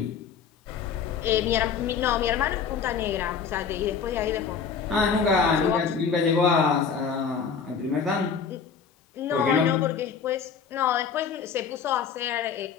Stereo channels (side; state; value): right; quieter; 6.4 dB